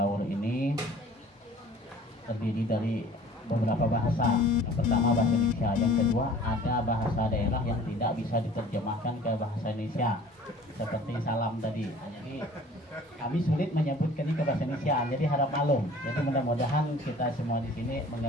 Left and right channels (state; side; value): normal; both; correlation 0.49